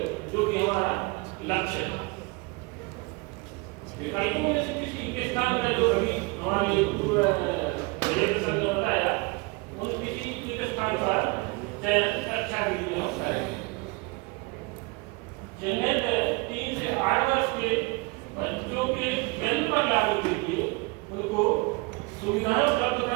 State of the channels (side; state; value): left; quieter; 26.0 dB